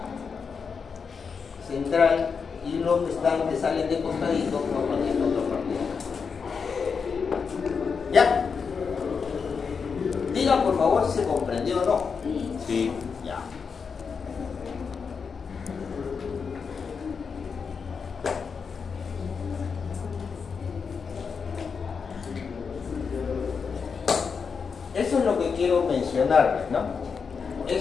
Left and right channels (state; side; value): quieter; right; 5.7 dB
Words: central y los que salen de costadito forman esta otra parte. ¿Ya? Diga por favor si se comprendió o no. Sí. Ya. Eso es lo que quiero mencionarles, ¿no?